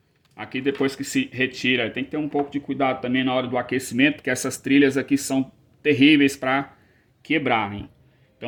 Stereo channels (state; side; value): identical; both; correlation 1.00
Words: aqui depois que se retira, tem que ter um pouco de cuidado também na hora do aquecimento, porque essas trilhas aqui são terríveis para quebrarem.